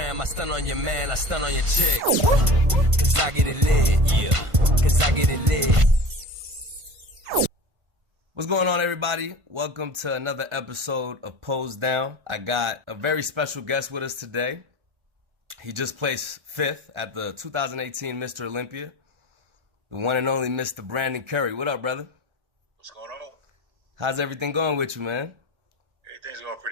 I stun on your man, I stun on your chick. Cause I get it lit, yeah. Cause I get it lit. What's going on, everybody? Welcome to another episode of Pose Down. I got a very special guest with us today. He just placed 5th at the 2018 Mr. Olympia. The one and only Mr. Brandon Curry. What up, brother? What's going on? How's everything going with you, man? Everything's going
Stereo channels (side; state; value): left; late; 1.5 ms